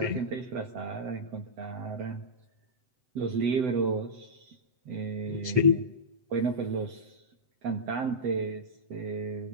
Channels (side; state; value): left; late; 7.9 ms